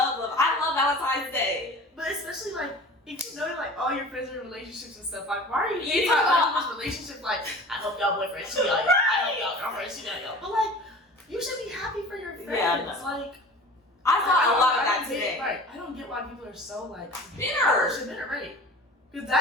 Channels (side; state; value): both; normal; correlation 0.40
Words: love. I love Valentine's Day. But especially, like, if you know, like, all your friends are in relationships and stuff, like, why are you hating Yeah. on other people's relationships? Like, I hope y'all boyfriends cheat on y'all. I hope y'all girlfriends cheat on y'all. But, like, you should be happy for your friends. Yeah, no. Like, I thought a lot of that don't get- today. Right. I don't get why people are so, like, Bitter. bitter, right? Because